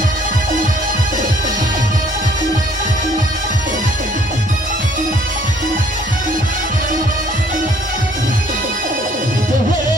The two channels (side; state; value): both; normal; correlation 0.61